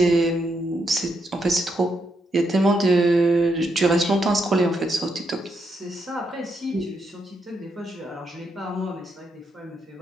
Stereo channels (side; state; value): both; normal; correlation 0.79